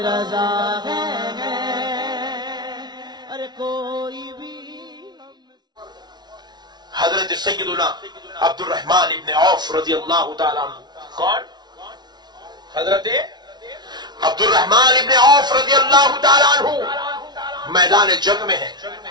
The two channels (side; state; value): left; late; 0.20 ms